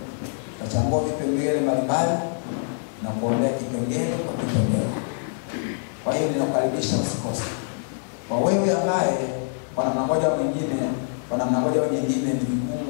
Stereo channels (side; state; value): right; silent; digital silence